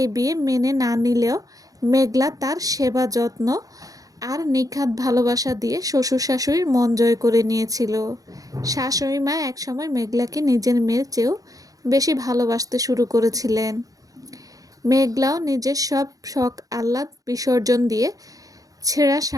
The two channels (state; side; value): late; left; 0.17 ms